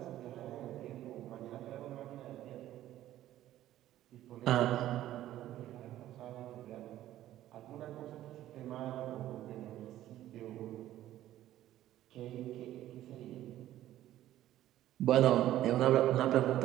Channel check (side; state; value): left; quieter; 13.5 dB